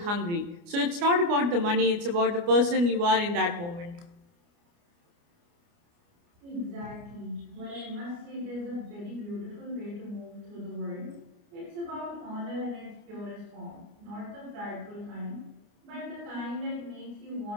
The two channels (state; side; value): late; left; 29 ms